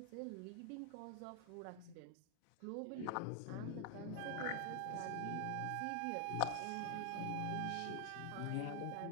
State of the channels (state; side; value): different; both; correlation 0.00